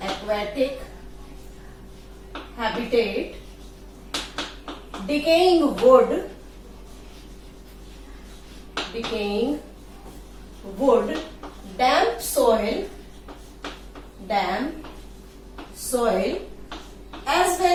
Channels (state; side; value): identical; both; correlation 1.00